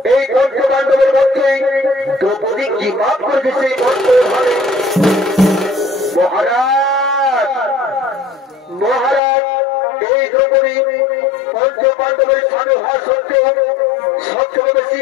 এই পঞ্চপাণ্ডবের মধ্যে দ্রৌপদী কি পাপ করেছে মহারাজ। মহারাজ এই দ্রৌপদী পঞ্চপাণ্ডবের স্বামী হওয়া সত্ত্বেও সবচেয়ে বেশি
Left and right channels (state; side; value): drops out; right; at 9.2 s